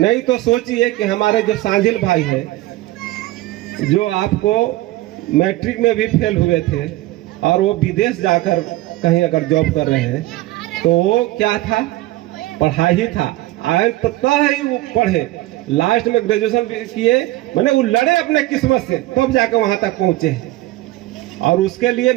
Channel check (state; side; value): quieter; left; 17.5 dB